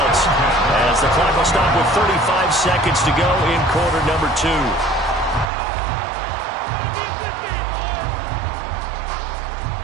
as the clock will stop with 35 seconds to go in quarter number 2.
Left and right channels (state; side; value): drops out; left; at 5.5 s